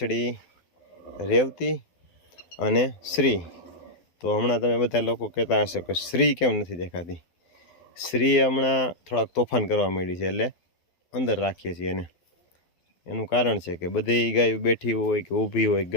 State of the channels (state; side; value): late; right; 12 ms